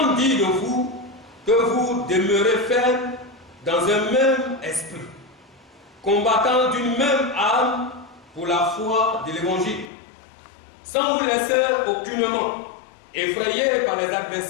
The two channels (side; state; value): right; drops out; at 9.9 s